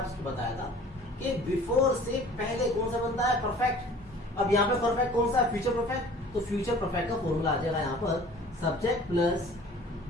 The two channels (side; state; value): both; normal; correlation 0.48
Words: बताया था कि बिफोर से पहले कौन सा बनता है, परफेक्ट। अब यहाँ पे परफेक्ट कौन सा है, फ्यूचर परफेक्ट। तो फ्यूचर परफेक्ट का फॉर्मूला आ जाएगा यहाँ पर सब्जेक्ट प्लस